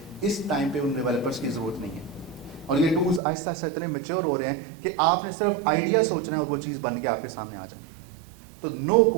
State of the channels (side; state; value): left; drops out; at 3.2 s